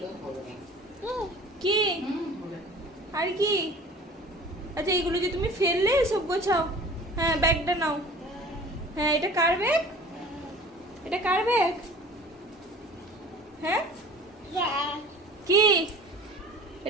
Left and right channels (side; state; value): both; normal; correlation 0.44